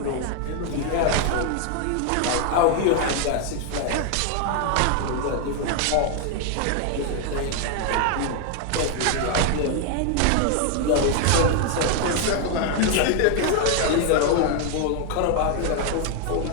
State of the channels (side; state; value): both; different; correlation 0.00